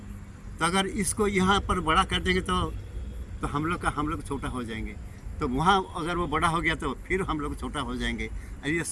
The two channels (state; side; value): identical; both; correlation 1.00